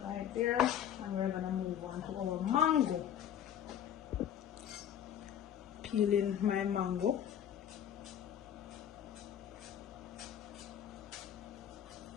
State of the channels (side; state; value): right; quieter; 9.8 dB